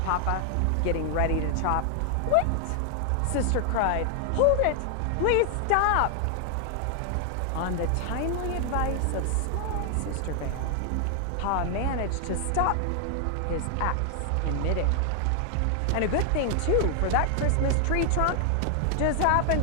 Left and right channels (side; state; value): both; different; correlation 0.00